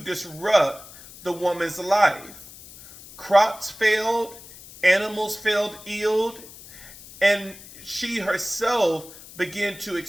disrupt the woman's life. Crops failed, animals fell ill, and she herself began to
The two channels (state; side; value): noise; left; hiss, 18 dB below the sound